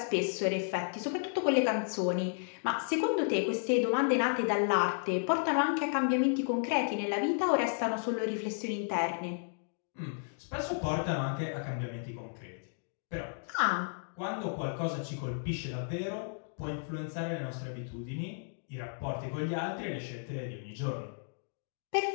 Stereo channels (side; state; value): right; silent; digital silence